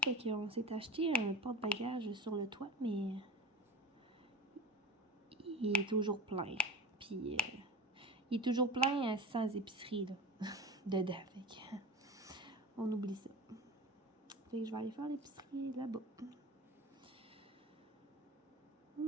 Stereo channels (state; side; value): normal; both; correlation 0.33